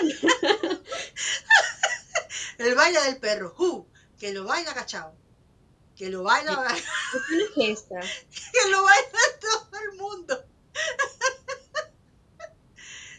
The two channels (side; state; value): both; identical; correlation 1.00